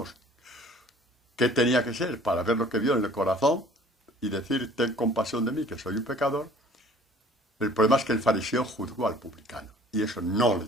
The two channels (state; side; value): normal; both; correlation 0.51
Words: qué tenía que ser para ver lo que vio en el corazón y decir, ten compasión de mí, que soy un pecador. El problema es que el fariseo juzgó al publicano, y eso no le